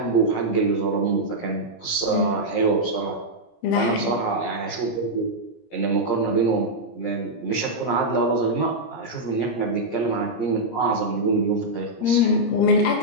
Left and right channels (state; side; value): late; right; 17 ms